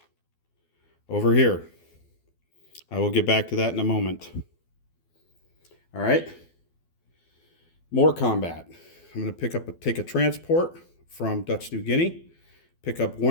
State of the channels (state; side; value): late; right; 12 ms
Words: over here. I will get back to that in a moment. All right. More combat. I'm going to take a transport from Dutch New Guinea, pick up